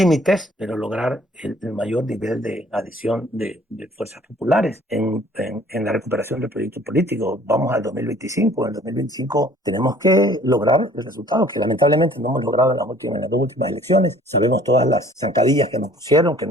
pero lograr el mayor nivel de adhesión de fuerzas populares en la recuperación del proyecto político. Vamos al 2025. En el 2025 tenemos que lograr el resultado que lamentablemente no hemos logrado en las dos últimas elecciones. Sabemos todas las zancadillas que nos pusieron, que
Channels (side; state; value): both; normal; correlation 0.55